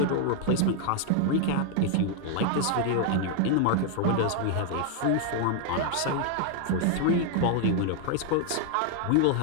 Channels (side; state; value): both; different; correlation 0.00